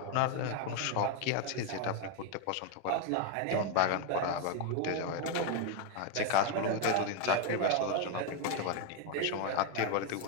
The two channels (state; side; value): different; both; correlation 0.01